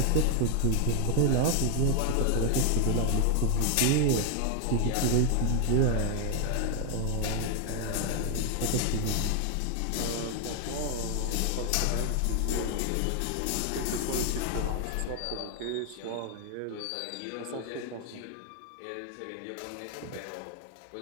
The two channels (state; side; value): different; both; correlation 0.01